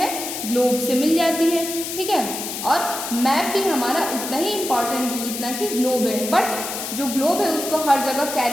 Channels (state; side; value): noise; left; hiss, 6 dB below the sound